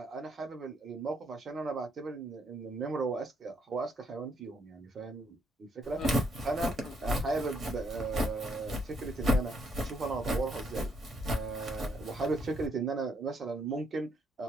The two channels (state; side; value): normal; both; correlation 0.72